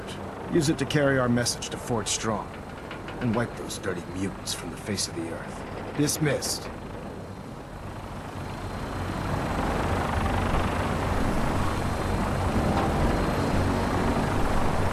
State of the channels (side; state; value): both; identical; correlation 1.00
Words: Use it to carry our message to Fort Strong, and wipe those dirty mutants from the face of the earth. Dismissed.